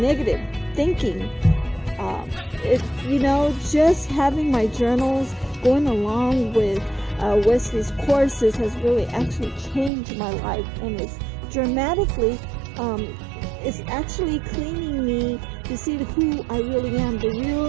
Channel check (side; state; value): left; drops out; at 9.9 s